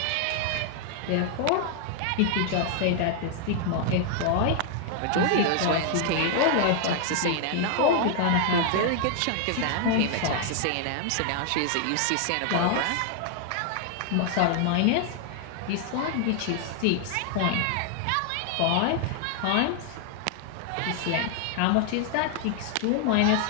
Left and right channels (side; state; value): both; different; correlation 0.00